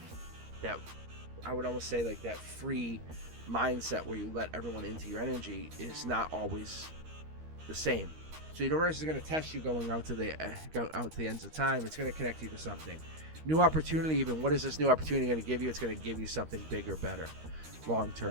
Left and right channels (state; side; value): late; left; 13 ms